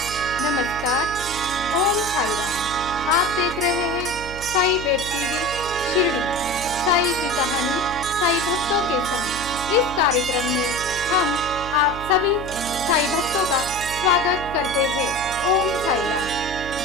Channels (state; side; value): noise; right; hum, 12 dB below the sound